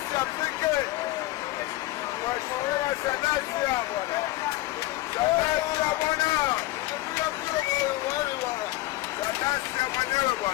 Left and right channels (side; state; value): right; quieter; 18.1 dB